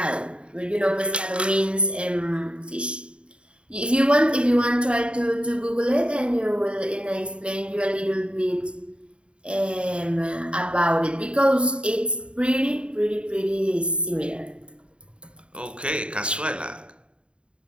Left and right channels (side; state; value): left; late; 0.055 ms